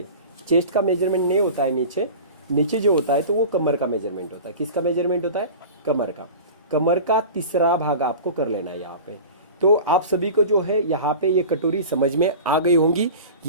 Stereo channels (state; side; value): inverted; both; correlation -0.35